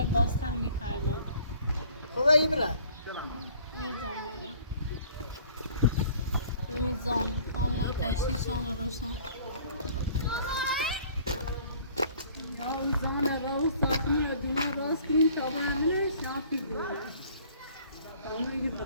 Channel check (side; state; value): both; inverted; correlation -0.54